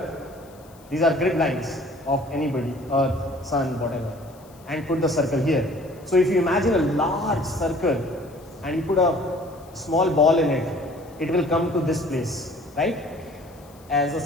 These are grid lines of anybody, earth, sun, whatever, and put the circle here. So if you imagine a large circle and you put a small ball in it, it will come to this place, right? As a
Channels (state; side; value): noise; left; hiss, 27 dB below the sound